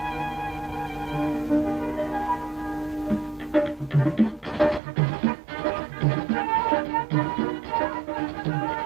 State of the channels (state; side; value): drops out; left; at 4.8 s